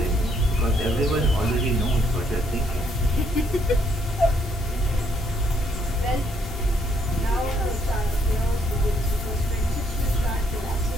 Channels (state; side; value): normal; both; correlation 0.71